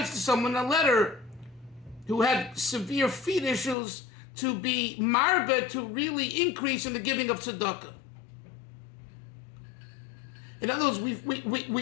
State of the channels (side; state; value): right; drops out; at 3.8 s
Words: to someone in a letter who had severe feet issues to be marbe, to really increase in the giving of tzedakah. In other words,